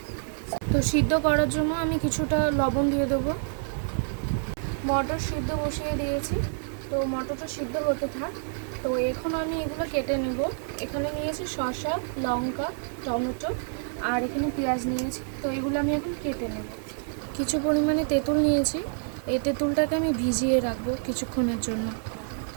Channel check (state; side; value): silent; left; digital silence